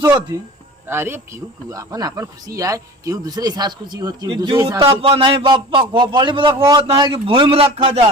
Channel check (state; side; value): normal; both; correlation 0.37